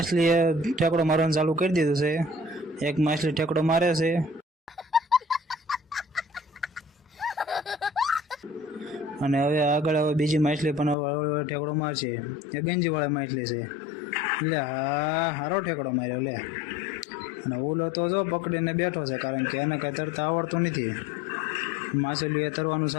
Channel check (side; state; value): right; drops out; at 11.0 s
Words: ઠેકડો મારવાનું ચાલુ કરી દીધું છે. એક માછલી ઠેકડો મારે છે અને હવે આગળ હવે બીજી માછલી પણ હવે ઠેકડો મારશે. એ ગંજીવાળી માછલી છે એટલે હા સારો ઠેકડો માર્યો લે. અને ઓલો તો જો પકડીને બેઠો છે કારણ કે એને કાંઈ તરતા આવડતું નથી. માછલીએ તરવાનું